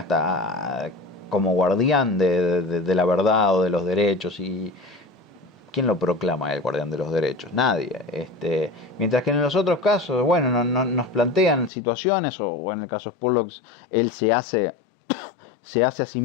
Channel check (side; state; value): right; drops out; at 11.7 s